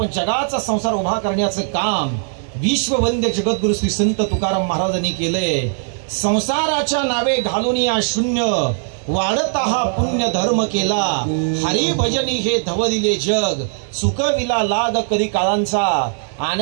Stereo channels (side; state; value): left; silent; 59 dB below the other